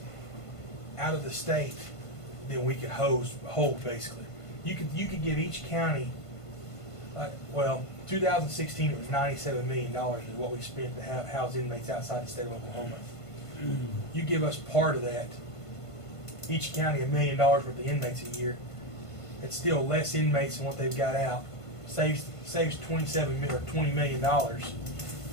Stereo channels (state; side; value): late; right; 1.5 ms